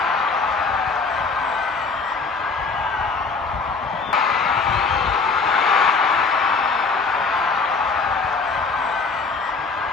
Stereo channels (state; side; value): quieter; right; 4.4 dB